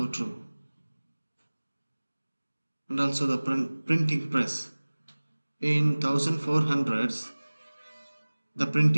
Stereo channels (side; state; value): both; inverted; correlation -1.00